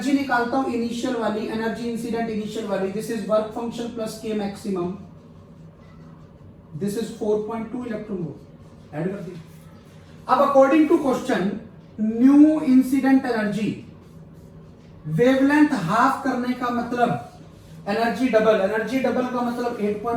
निकालता हूं, इनिशियल वाली एनर्जी, इंसिडेंट इनिशियल वाली। This is work function plus के maximum, this is 4.2 electron volt, add कर दी। अब according to question, new incident energy, wavelength half करने का मतलब एनर्जी डबल, एनर्जी डबल का मतलब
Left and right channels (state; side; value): identical; both; correlation 1.00